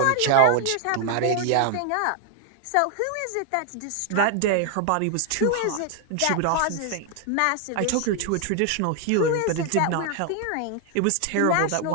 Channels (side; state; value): both; different; correlation 0.00